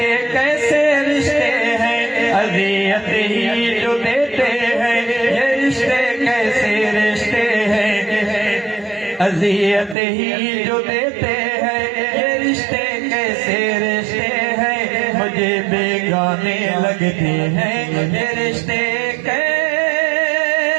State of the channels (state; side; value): drops out; left; at 10.0 s